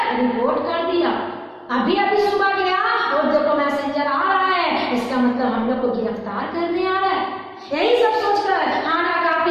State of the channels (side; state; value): both; identical; correlation 1.00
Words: रिपोर्ट कर दिया, अभी अभी सुबह गया और देखो मैसेंजर आ रहा है, इसका मतलब हम लोग को गिरफ्तार करने आ रहा है। यही सब सोचकर हाना